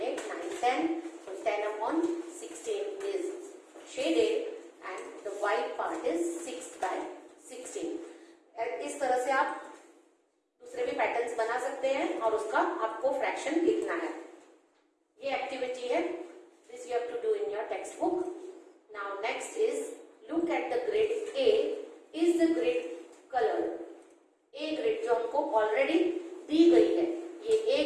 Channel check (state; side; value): identical; both; correlation 1.00